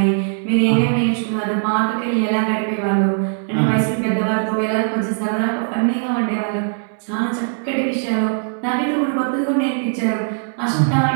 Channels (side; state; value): left; silent; digital silence